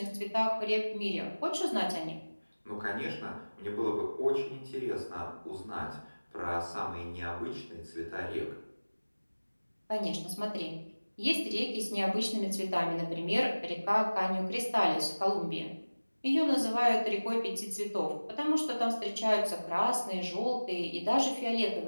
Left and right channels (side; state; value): both; inverted; correlation -1.00